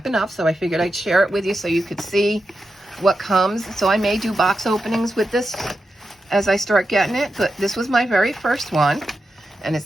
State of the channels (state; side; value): normal; both; correlation 0.89